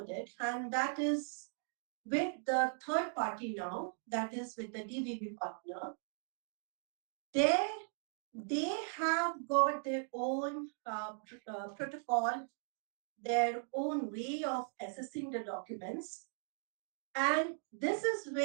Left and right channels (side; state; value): left; silent; 52 dB below the other